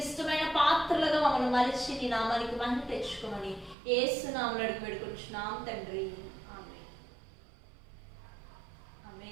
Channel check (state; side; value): drops out; left; at 3.8 s